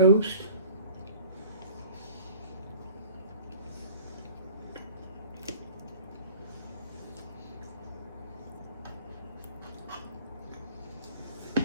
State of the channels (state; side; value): inverted; both; correlation -0.47